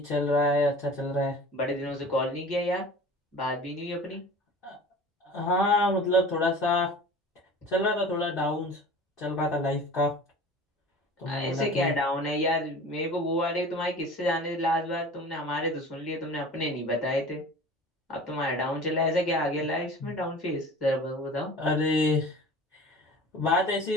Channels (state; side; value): normal; both; correlation 0.41